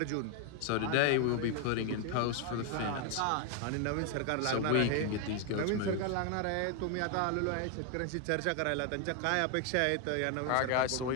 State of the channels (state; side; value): different; both; correlation 0.01